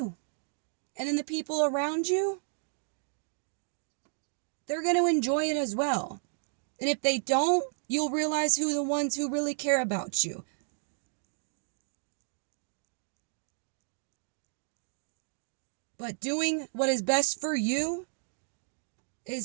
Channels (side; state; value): left; silent; digital silence